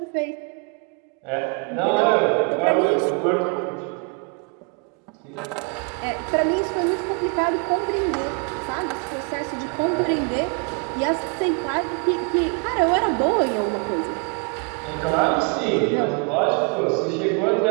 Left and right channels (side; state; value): left; quieter; 36.9 dB